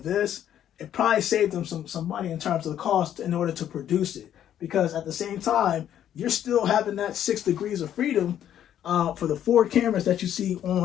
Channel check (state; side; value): quieter; right; 10.6 dB